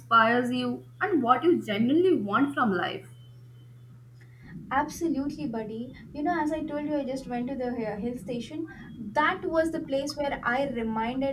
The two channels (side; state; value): both; identical; correlation 1.00